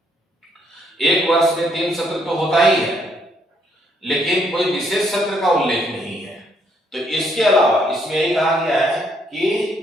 एक वर्ष में 3 सत्र तो होता ही है, लेकिन कोई विशेष सत्र का उल्लेख नहीं है। तो इसके अलावा इसमें यही कहा गया है कि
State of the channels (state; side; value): normal; both; correlation 0.71